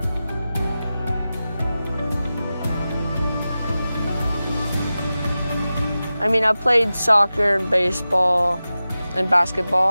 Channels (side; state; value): both; inverted; correlation -0.94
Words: I mean, I played soccer and baseball and